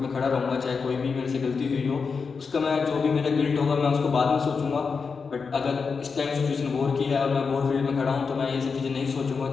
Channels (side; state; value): right; quieter; 5.2 dB